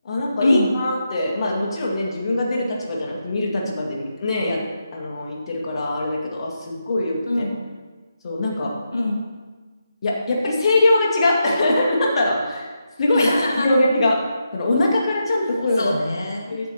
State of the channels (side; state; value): both; inverted; correlation -0.85